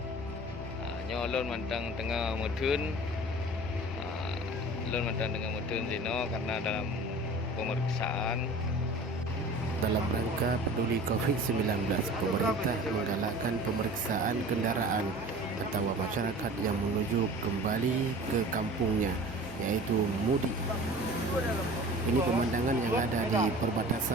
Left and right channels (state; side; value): normal; both; correlation 0.41